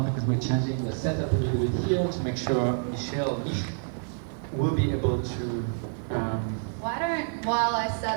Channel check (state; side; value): silent; left; 57 dB below the other